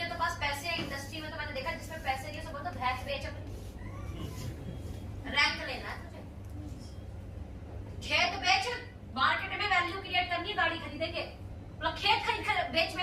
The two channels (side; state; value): both; identical; correlation 1.00